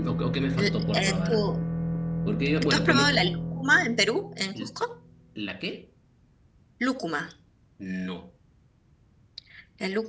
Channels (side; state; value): both; identical; correlation 1.00